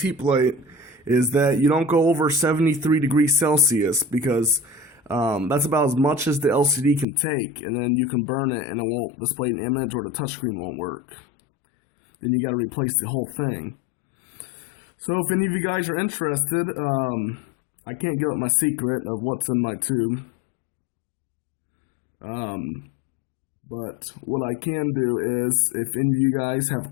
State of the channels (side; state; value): right; drops out; at 7.1 s